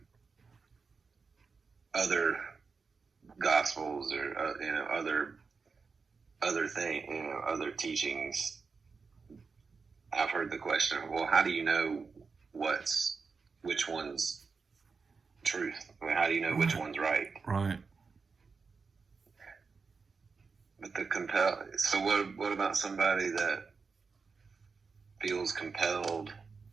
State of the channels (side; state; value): left; quieter; 4.9 dB